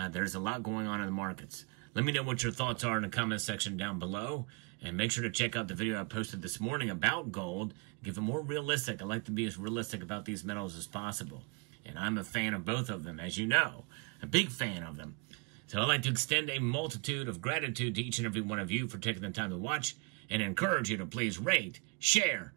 a lot going on in the markets. Let me know what your thoughts are in the comment section down below, and make sure to check out the video I posted this morning about gold. Give it more realistic. I like to be as realistic about these metals as possible. And I'm a fan of both of them, as you know, a big fan of them. So I'd like to extend a multitude of gratitude to each and every one of you for taking the time to watch, and encourage you to please rate, share,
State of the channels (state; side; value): quieter; left; 32.2 dB